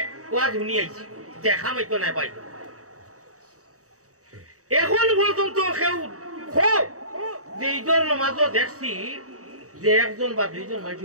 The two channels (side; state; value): left; late; 0.65 ms